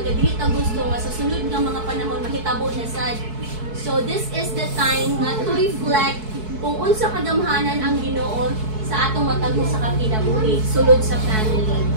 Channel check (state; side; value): late; left; 4.6 ms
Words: ka, dili ta gusto nga sa sunod nga mga panahon mahitabo na sad. So this is the time nga to reflect kung unsa kagamhanan ang Ginoo sa atong matagho sa kinabuhi, sulod sa family.